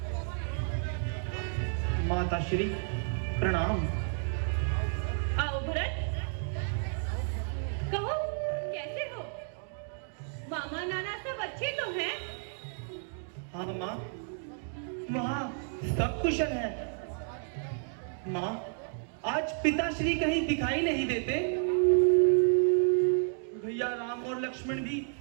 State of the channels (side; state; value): left; silent; 57 dB below the other